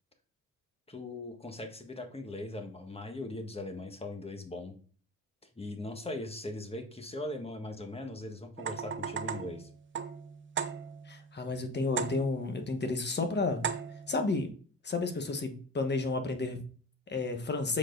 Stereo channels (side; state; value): both; normal; correlation 0.32